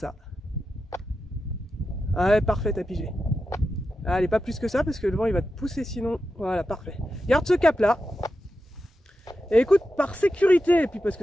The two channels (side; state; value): both; normal; correlation 0.90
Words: Ah ouais, parfait, t'as pigé. Allez, pas plus que ça, parce que le vent, il va te pousser sinon. Voilà, parfait. Garde ce cap-là. Et écoute, par sécurité, et puis parce